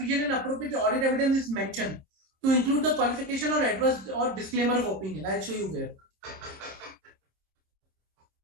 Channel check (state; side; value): late; left; 27 ms